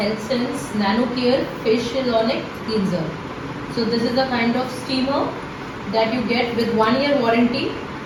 Nano Care Facial Ionic Cleanser. So this is a kind of steamer that you get with 1 year warranty,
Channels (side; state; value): both; identical; correlation 1.00